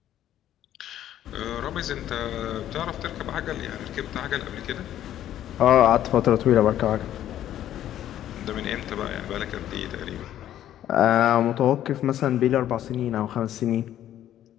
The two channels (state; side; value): quieter; right; 11.8 dB